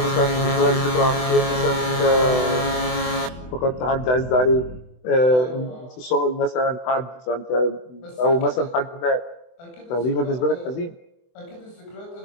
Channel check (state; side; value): late; right; 24 ms